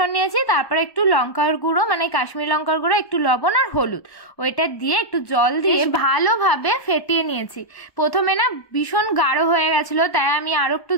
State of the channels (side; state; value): right; late; 1.1 ms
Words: নিয়েছি, তারপরে একটু লঙ্কার গুঁড়ো মানে কাশ্মীর লঙ্কার গুঁড়ো, একটু লবণ আর হলুদ, ওইটা দিয়ে একটু জল দিয়ে ভালোভাবে ফেটিয়ে নিয়েছি। প্রথমে না ভীষণ গাঢ় হয়ে গেছিল, তাই আমি আরো একটু